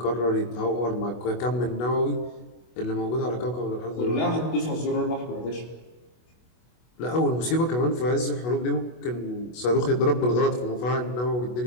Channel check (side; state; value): right; late; 24 ms